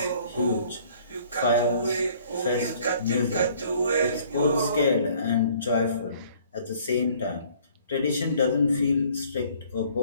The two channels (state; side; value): inverted; both; correlation -0.57